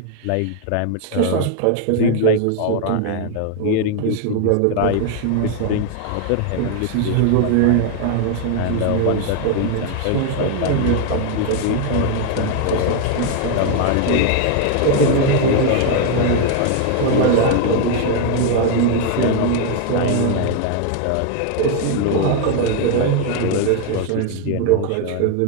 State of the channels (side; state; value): both; different; correlation 0.00